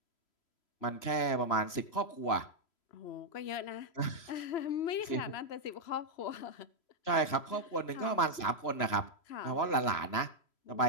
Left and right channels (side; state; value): right; late; 3.0 ms